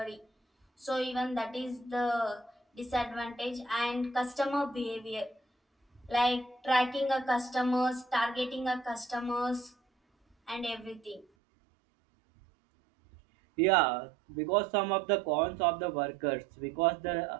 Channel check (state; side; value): drops out; left; at 11.2 s